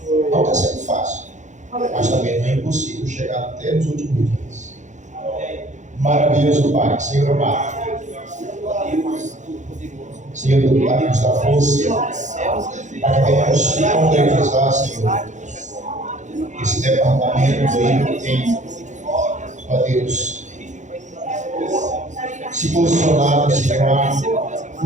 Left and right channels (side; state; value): left; late; 0.35 ms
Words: Não está sendo fácil, mas também não é impossível chegar até nos últimos dias. Maravilhoso Pai, Senhor amado, Senhor do Pai, nos dá força para que venhamos se concretizar, Senhor, esse departamento aí que tem, ó Deus, se posicionado, Senhor, a